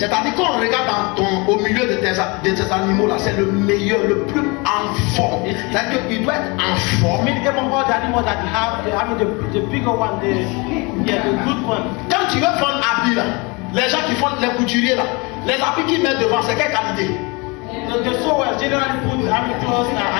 qu'on regarde au milieu de tes animaux là, c'est le meilleur, le plus en forme. C'est-à-dire qu'il doit être en forme. I mean, even all the animals that you have, the bigger one, the good one. Quand tu veux faire un habit là, les gens qui font les couturiers là, les habits qu'ils mettent devant, c'est quelle qualité? The sewers generally put clothes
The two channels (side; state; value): right; quieter; 27.9 dB